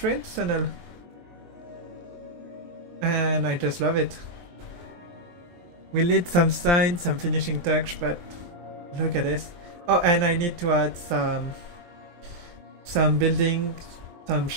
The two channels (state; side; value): late; left; 23 ms